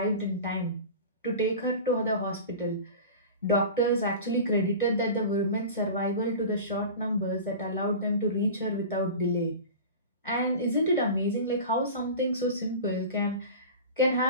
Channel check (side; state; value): both; inverted; correlation -0.34